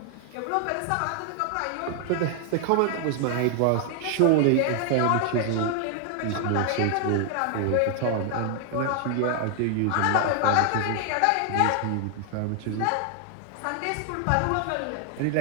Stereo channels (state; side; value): different; both; correlation 0.00